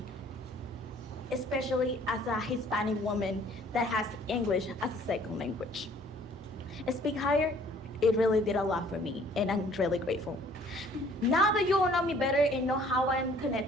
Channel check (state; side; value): normal; both; correlation 0.57